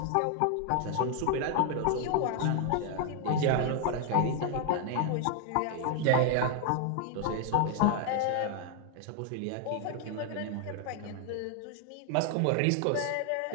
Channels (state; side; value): different; both; correlation 0.00